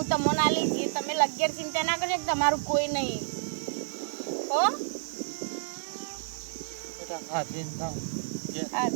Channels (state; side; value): silent; left; digital silence